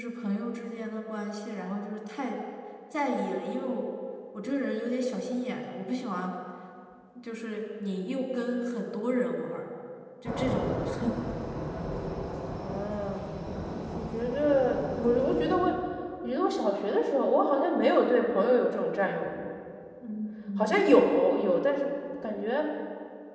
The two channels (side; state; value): both; identical; correlation 1.00